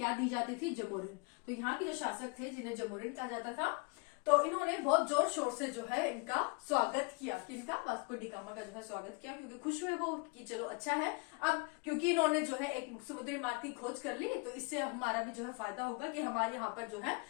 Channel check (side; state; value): right; quieter; 30.7 dB